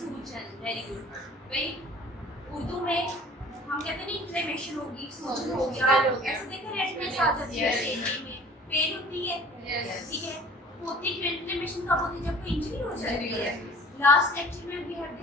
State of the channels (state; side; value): normal; both; correlation 0.48